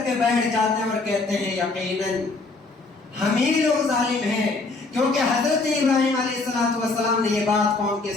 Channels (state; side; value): quieter; right; 3.6 dB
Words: کے بیٹھ جاتے ہیں اور کہتے ہیں یقیناً ہم ہی لوگ ظالم ہیں، کیونکہ حضرت ابراہیم علیہ السلام نے یہ بات قوم کے